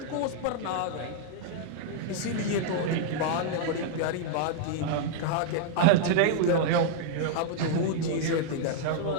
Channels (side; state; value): both; different; correlation -0.01